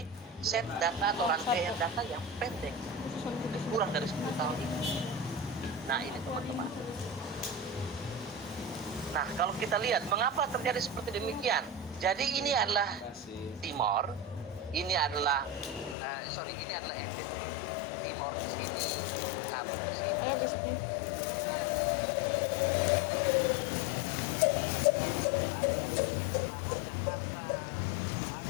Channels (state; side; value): drops out; right; at 16.0 s